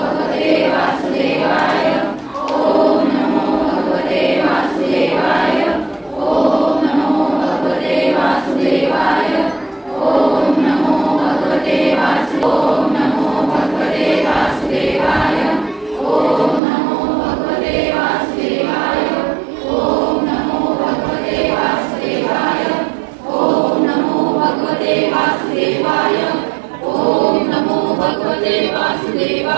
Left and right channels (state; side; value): drops out; left; at 16.6 s